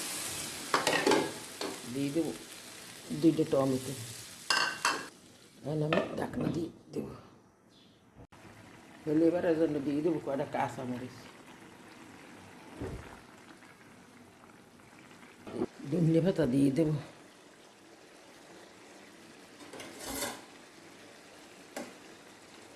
দিয়ে দেবো 2টা টমেটো। এখন আমি ঢাকনা দিয়ে দেবো। ফ্লেভারের জন্য দিয়ে দেবো কয়টা কাঁচামরিচ, ধনে পাতা দিয়ে দেবো।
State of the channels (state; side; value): identical; both; correlation 1.00